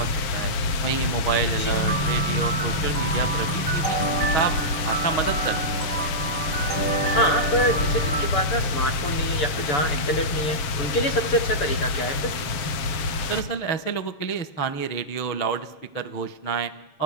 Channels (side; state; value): right; late; 6.9 ms